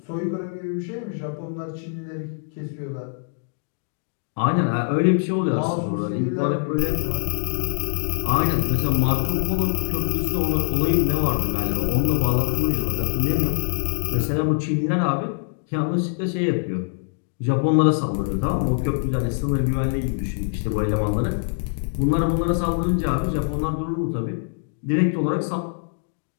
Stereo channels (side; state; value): right; silent; digital silence